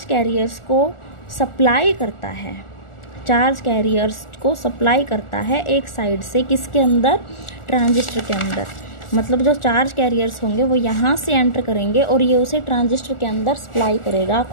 कैरियर्स को सप्लाई करता है, चार्ज कैरियर्स को सप्लाई करता है एक साइड से, किसके अंदर, ट्रांजिस्टर के अंदर। मतलब जो चार्ज कैरियर्स होंगे वो यहाँ से एंटर करेंगे और ये उसे ट्रांजिस्टर के अंदर सप्लाई करेगा,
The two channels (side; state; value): right; late; 1.4 ms